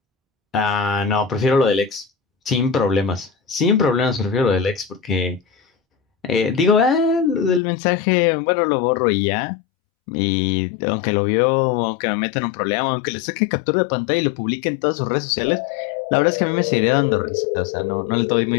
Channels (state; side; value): drops out; right; at 7.6 s